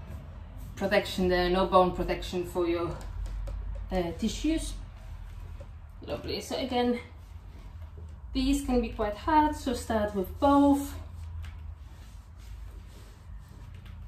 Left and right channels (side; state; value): both; identical; correlation 1.00